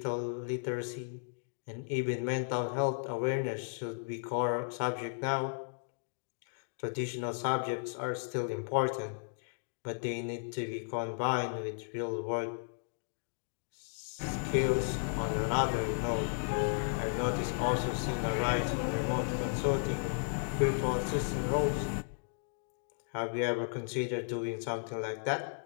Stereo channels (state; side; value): silent; right; digital silence